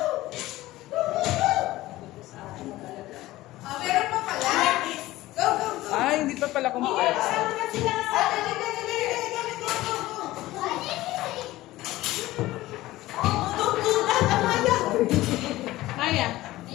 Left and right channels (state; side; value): quieter; right; 17.1 dB